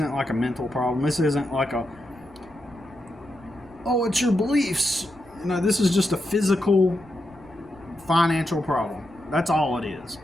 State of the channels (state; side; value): noise; left; rumble, 25 dB below the sound